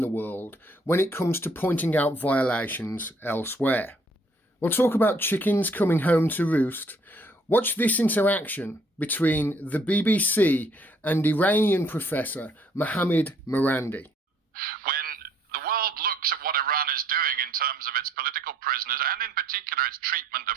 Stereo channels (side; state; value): both; normal; correlation 0.64